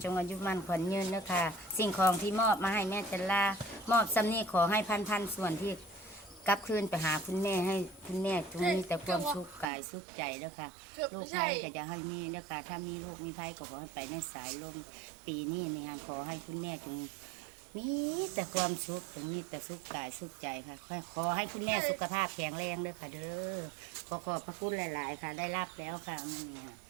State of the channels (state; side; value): drops out; left; at 9.7 s